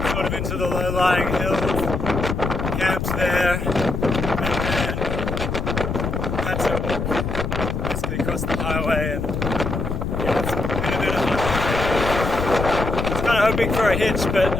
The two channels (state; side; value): noise; left; rumble, 3 dB below the sound